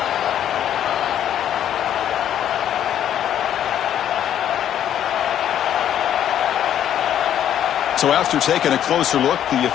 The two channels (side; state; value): right; quieter; 10.4 dB